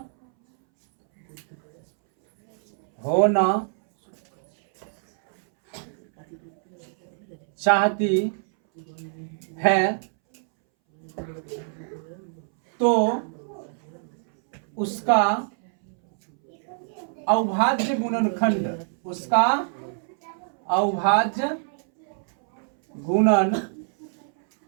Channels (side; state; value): left; silent; 62 dB below the other